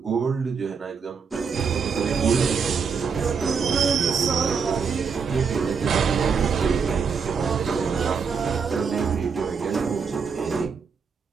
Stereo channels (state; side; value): quieter; left; 5.8 dB